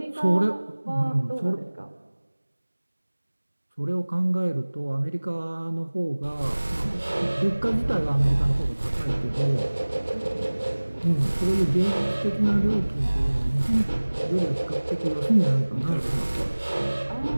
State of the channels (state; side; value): inverted; both; correlation -1.00